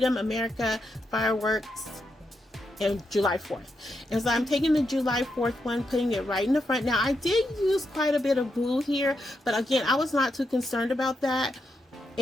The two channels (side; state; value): both; normal; correlation 0.83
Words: America, Fireworks, and July 4th. And so I'm taking the July 4th one, putting it right in the front. Now I did use quite a bit of glue here, but again, I was not too concerned about that,